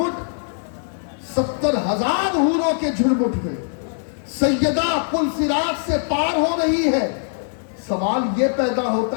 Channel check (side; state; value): right; silent; digital silence